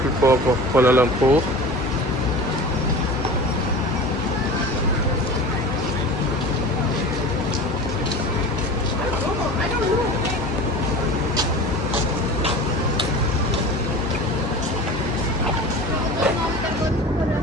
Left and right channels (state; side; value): normal; both; correlation 0.36